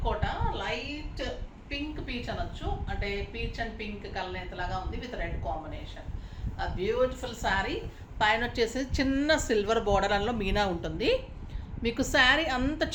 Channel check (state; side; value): identical; both; correlation 1.00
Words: కోట, లైట్ పింక్ పీచ్ అనొచ్చు, అంటే పీచ్ అండ్ పింక్ కలనేతలాగా ఉంది విత్ రెడ్ కాంబినేషన్. ఆ బ్యూటిఫుల్ శారీ పైన వచ్చేసి చిన్న సిల్వర్ బోర్డర్ అందులో మీనా ఉంటుంది. మీకు శారీ అంత